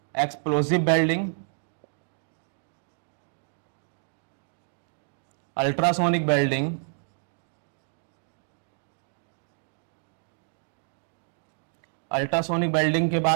explosive welding, ultrasonic welding, ultrasonic welding के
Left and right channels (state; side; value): silent; left; digital silence